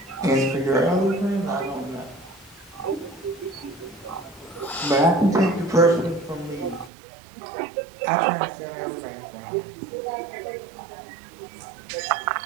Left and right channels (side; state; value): left; drops out; at 6.9 s